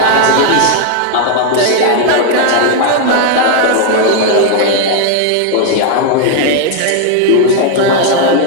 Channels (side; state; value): both; different; correlation 0.00